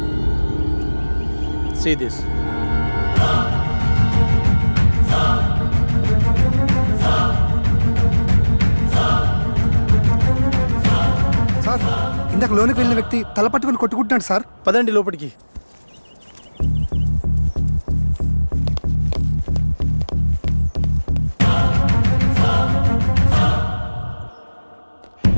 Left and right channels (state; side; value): inverted; both; correlation -1.00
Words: See this. సార్, ఇందాక లోనికి వెళ్ళిన వ్యక్తి తల పట్టుకుని కొట్టుకుంటున్నాడు సార్. పదండి లోపలికి.